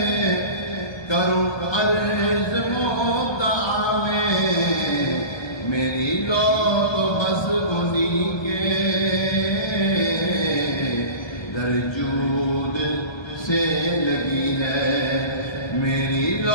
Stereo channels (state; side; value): late; right; 1.3 ms